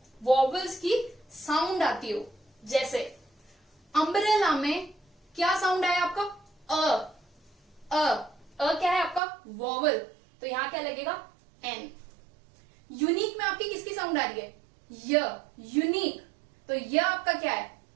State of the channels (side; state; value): left; drops out; at 9.2 s